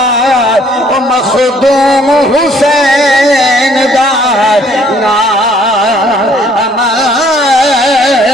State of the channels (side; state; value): both; normal; correlation 0.61